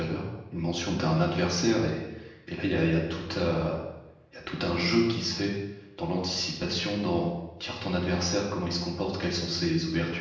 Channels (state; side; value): identical; both; correlation 1.00